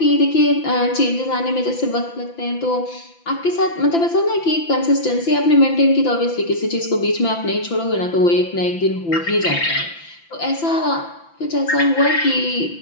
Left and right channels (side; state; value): right; late; 5.9 ms